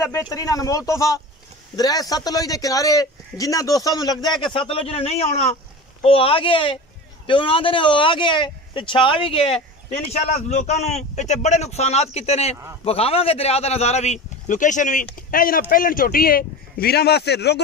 बेहतरीन अनमोल तोहफा। दरिया सतलुज के किनारे जिन्हां दोस्तों नूं लगदा है कि सतलुज ने नहीं आउणा वो आ गया है ते उन्हां दे ने वो आ गया है ते छा भी गया है। इंशाअल्लाह लोगों को इतने बड़े नुकसानात किते ने विखावांगे दरिया का नज़ारा भी लोकेशन भी। यह जनाब पहलन चोटी है वीरां वास्ते रुग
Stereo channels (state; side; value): normal; both; correlation 0.31